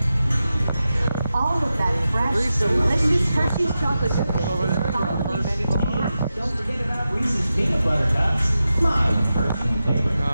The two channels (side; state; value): both; inverted; correlation -0.91